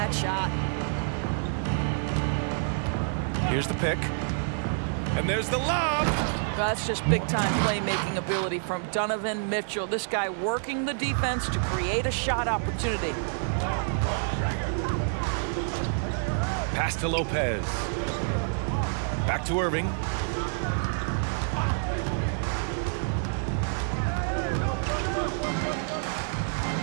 shot. Here's the pick. And there's the lob. That's just big-time playmaking ability from Donovan Mitchell. This guy working the defense to create a shot opportunity. Pass to Lopez. Back to Irving.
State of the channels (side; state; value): left; silent; 59 dB below the other